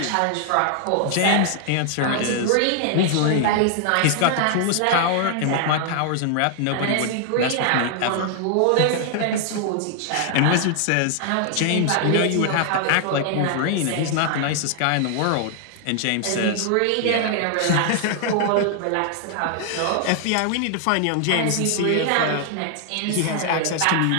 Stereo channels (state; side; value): different; both; correlation 0.00